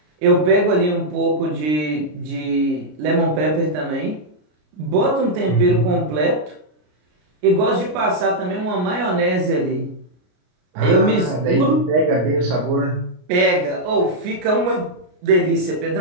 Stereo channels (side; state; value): left; late; 33 ms